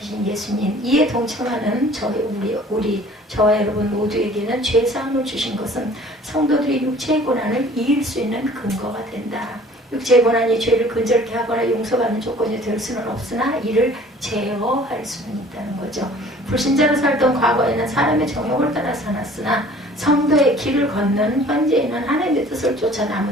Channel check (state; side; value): normal; both; correlation 0.50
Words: 예수님, 이에 동참하는 저와 여러분 모두에게는 죄사함을 주신 것은 성도들이 육체의 고난을 이길 수 있는 근거가 된다. 육체의 고난이 죄를 근절케 하거나 용서받는 조건이 될 수는 없으나 이를 제어할 수는 있다는 거죠. 불신자로 살던 과거에는 사람의 정욕을 따라 살았으나 성도의 길을 걷는 현재에는 하나님의 뜻을 쫓아